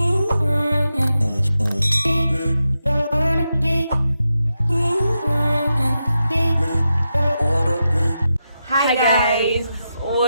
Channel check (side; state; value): both; inverted; correlation -0.88